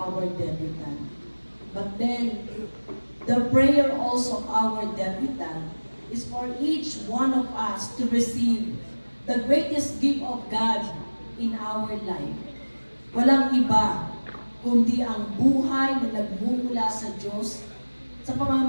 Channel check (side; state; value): both; inverted; correlation -1.00